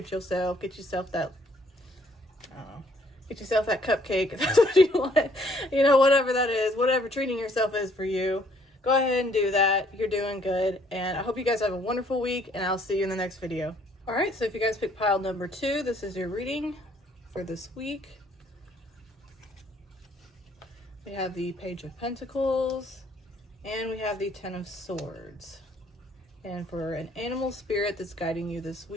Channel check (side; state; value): both; normal; correlation 0.63